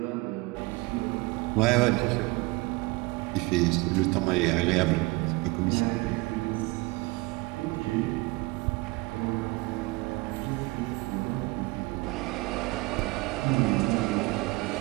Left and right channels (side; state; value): left; quieter; 24.0 dB